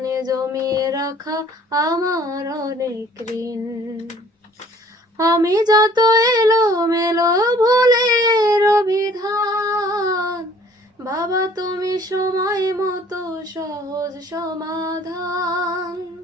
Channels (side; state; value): both; normal; correlation 0.55